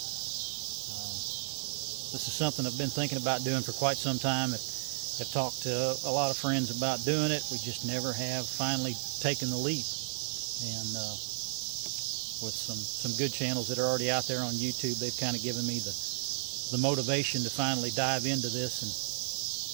This is something I've been thinking about doing for quite some time. I've talked to a lot of friends about doing it. We just never have finally taken the leap. And with some good channels that are already out there on YouTube, they've kind of given me the motivation to finally dive into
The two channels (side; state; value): left; silent; digital silence